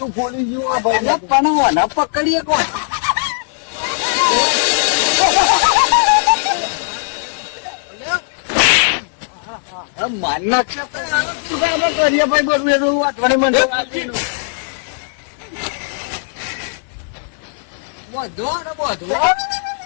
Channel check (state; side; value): silent; right; digital silence